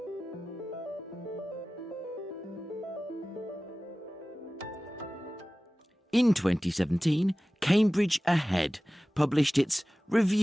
In 2017, Cambridge Ahead published its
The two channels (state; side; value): normal; both; correlation 0.97